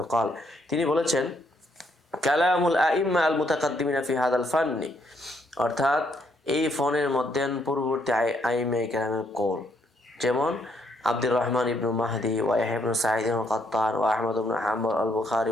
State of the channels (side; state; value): both; normal; correlation 0.72